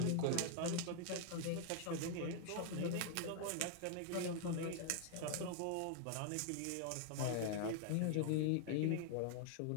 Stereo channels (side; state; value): both; different; correlation 0.00